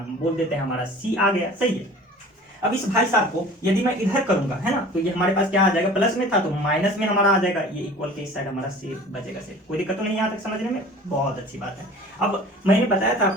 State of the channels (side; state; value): both; normal; correlation 0.43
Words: बोल देते हैं, हमारा c आ गया, सही है। अब इस भाई साहब को यदि मैं इधर करूंगा, है ना, तो ये हमारे पास क्या आ जाएगा, प्लस में था तो माइनस में हमारा आ जाएगा, ये इक्वल के इस साइड हमारा से बचेगा, से कोई दिक्कत तो नहीं यहाँ तक समझने में, बहुत अच्छी बात है। अब मैंने बताया था